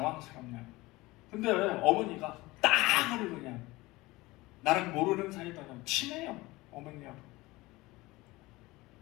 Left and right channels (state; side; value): quieter; right; 20.7 dB